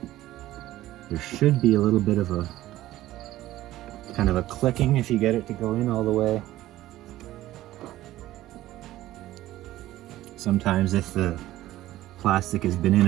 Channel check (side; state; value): left; quieter; 15.2 dB